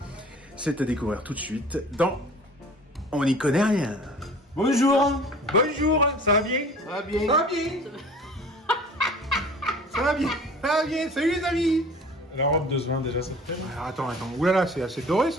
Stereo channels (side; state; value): both; normal; correlation 0.46